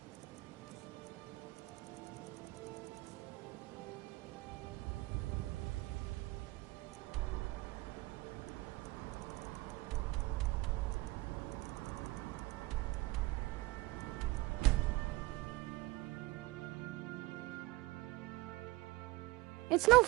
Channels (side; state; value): left; quieter; 20.9 dB